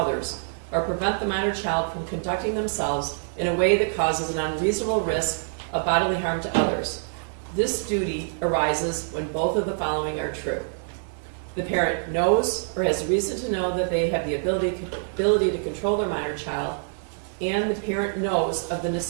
or prevent the minor child from conducting themselves in a way that causes an unreasonable risk of bodily harm to others. This duty arises when both of the following are true. The parent knows or has reason to know that they have the ability to control their minor child, and the parent knows of the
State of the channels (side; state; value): left; silent; digital silence